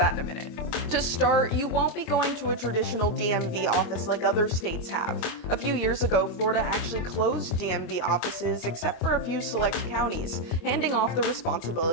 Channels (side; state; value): right; late; 25 ms